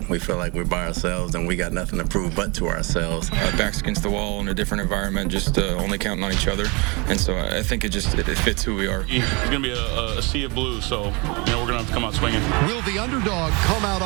we feel like we're by ourselves and we got nothing to prove but to ourselves. Backs against the wall in a different environment, just only counting on each other. And so I think it fits who we are. It's going to be a sea of blue, so we're going to have to come out swinging. Will the underdog come out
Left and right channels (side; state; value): left; quieter; 28.9 dB